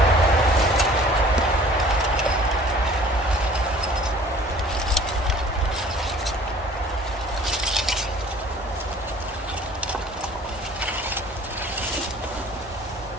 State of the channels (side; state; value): both; normal; correlation 0.51